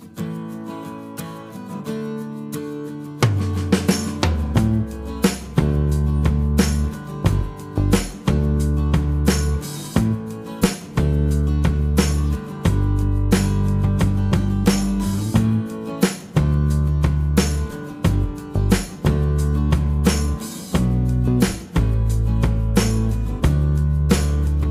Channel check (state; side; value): identical; both; correlation 1.00